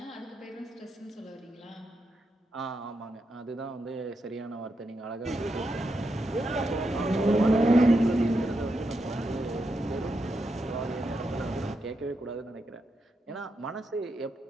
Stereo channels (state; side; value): normal; both; correlation 0.84